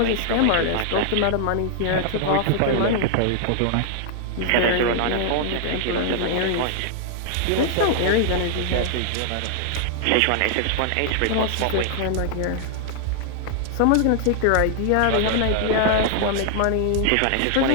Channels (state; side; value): different; both; correlation -0.01